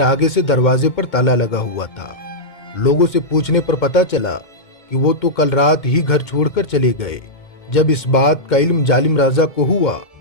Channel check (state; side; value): late; right; 1.7 ms